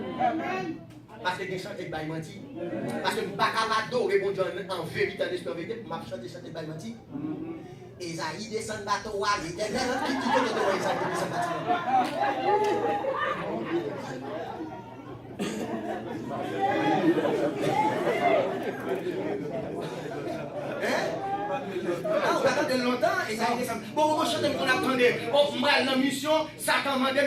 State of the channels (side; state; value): both; identical; correlation 1.00